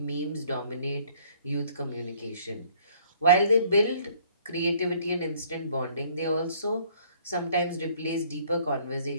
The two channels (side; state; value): both; inverted; correlation -0.59